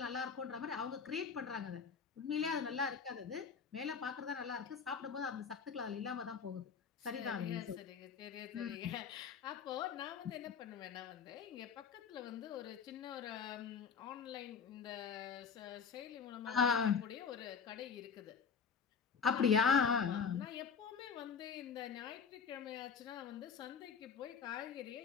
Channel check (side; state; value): right; quieter; 6.2 dB